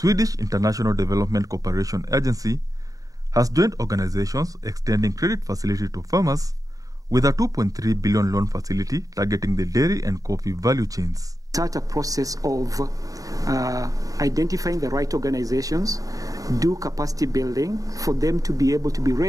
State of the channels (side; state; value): left; late; 0.17 ms